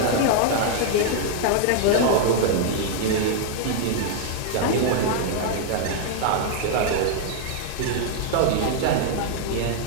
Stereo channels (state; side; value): different; both; correlation 0.00